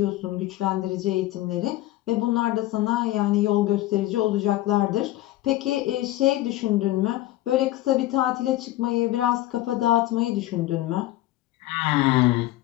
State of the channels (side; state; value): right; quieter; 15.8 dB